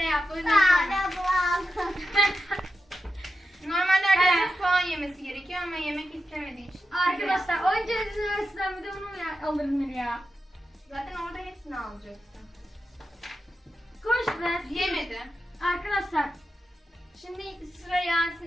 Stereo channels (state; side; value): normal; both; correlation 0.90